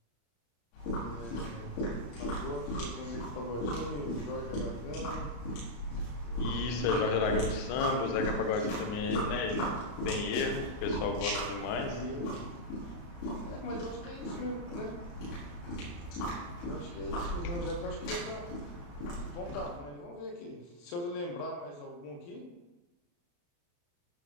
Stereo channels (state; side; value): late; right; 34 ms